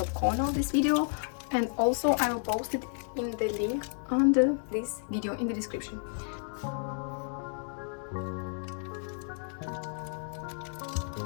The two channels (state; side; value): silent; right; digital silence